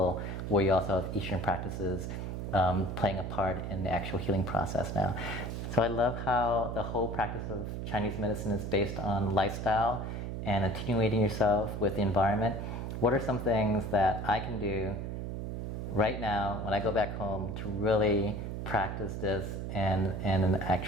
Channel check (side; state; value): right; noise; hum, 5 dB below the sound